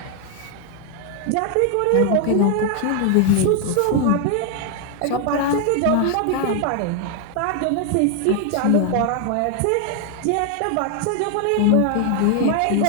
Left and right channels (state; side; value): different; both; correlation 0.00